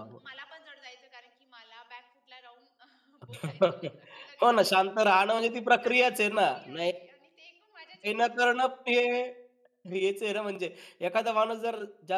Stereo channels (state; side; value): identical; both; correlation 1.00